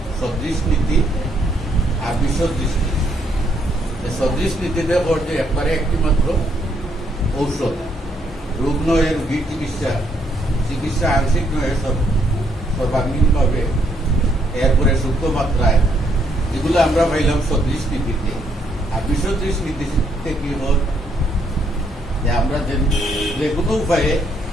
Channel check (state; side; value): normal; both; correlation 0.72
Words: সদৃশ নীতি আর বিসদৃশ নীতি। সদৃশ নীতিতে পড়ছে একবারে একটি মাত্র ঔষধ, রোগ নয় রোগীর চিকিৎসা আংশিক নয় সর্বাঙ্গীনভাবে, এরপরে সূক্ষ্ম মাত্রায়, এগুলো আমরা পাইলাম সদৃশ নীতিতে। আর বিসদৃশ নীতিতে কি হল যে আমরা যে কোনো উপায়ে